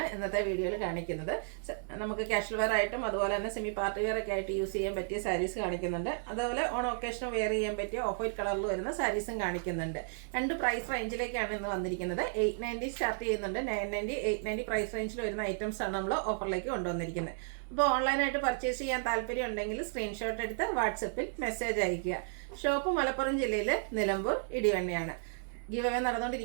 ഇന്നത്തെ വീഡിയോയിൽ കാണിക്കുന്നത്. നമുക്ക് കാഷ്വൽ വെയർ ആയിട്ടും അതുപോലെ തന്നെ സെമി പാർട്ടി വെയർ ഒക്കെ ആയിട്ട് യൂസ് ചെയ്യാൻ പറ്റിയ സാരീസ് കാണിക്കുന്നുണ്ട്. അതുപോലെ ഓൺ ഒക്കേഷന് വെയർ ചെയ്യാൻ പറ്റിയ ഓഫ് വൈറ്റ് കളറിൽ വരുന്ന സാരീസും കാണിക്കുന്നുണ്ട്. രണ്ട് പ്രൈസ് റേഞ്ചിലേക്കാണ് ഇന്ന് വന്നിരിക്കുന്നത്. 890 സ്റ്റാർട്ട് ചെയ്യുന്നുണ്ട്, 990, 890 പ്രൈസ് റേഞ്ചിൽ വരുന്ന ഐറ്റംസ് ആണ് നമ്മൾ ഓഫറിലേക്ക് കൊണ്ടുവന്നിരിക്കുന്നത്. അപ്പോൾ ഓൺലൈനായിട്ട് പർച്ചേസ് ചെയ്യാൻ താല്പര്യം ഉണ്ടെങ്കിൽ സ്ക്രീൻഷോട്ട് എടുത്ത് വാട്സപ്പിൽ മെസ്സേജ് അയയ്ക്കുക. ഷോപ്പ് മലപ്പുറം ജില്ലയിലെ നിലമ്പൂർ ഇടിവണ്ണയാണ്. ഗീവ് അവേ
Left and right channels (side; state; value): left; silent; 56 dB below the other